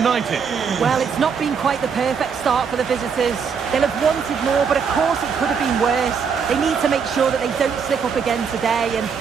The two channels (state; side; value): quieter; left; 6.3 dB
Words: Well, it's not been quite the perfect start for the visitors. They'll have wanted more, but of course it could have been worse. They need to make sure that they don't slip up again today, and